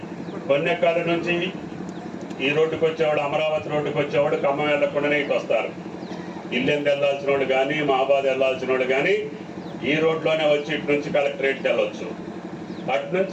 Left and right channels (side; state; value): both; identical; correlation 1.00